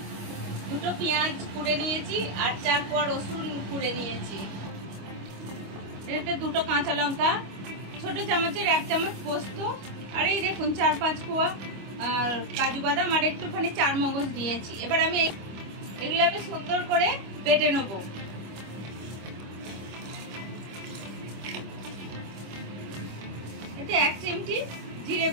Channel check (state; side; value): late; left; 25 ms